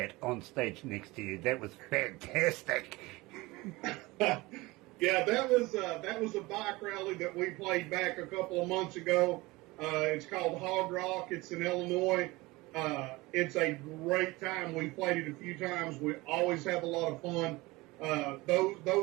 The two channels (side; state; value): left; quieter; 21.7 dB